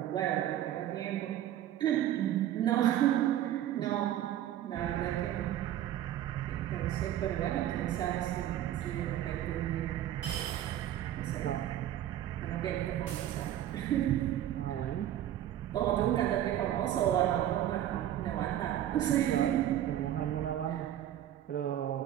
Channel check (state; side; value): quieter; left; 12.0 dB